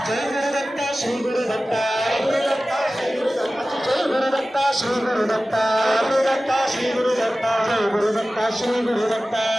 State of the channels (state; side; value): normal; both; correlation 0.96